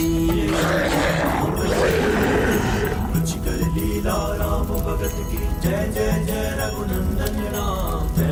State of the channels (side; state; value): both; identical; correlation 1.00